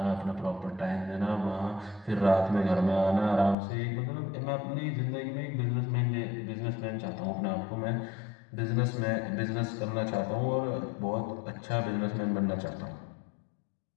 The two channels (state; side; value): drops out; right; at 3.6 s